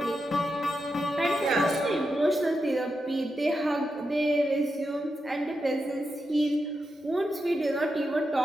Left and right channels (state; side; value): normal; both; correlation 0.87